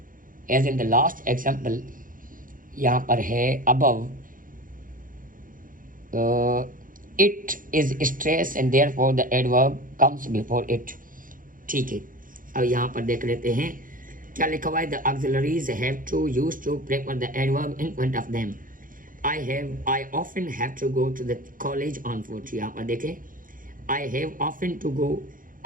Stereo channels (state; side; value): late; left; 0.40 ms